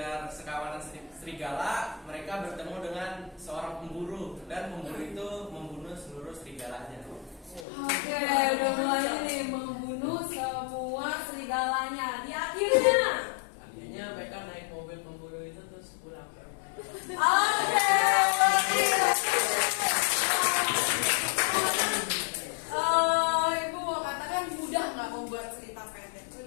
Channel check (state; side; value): drops out; right; at 7.7 s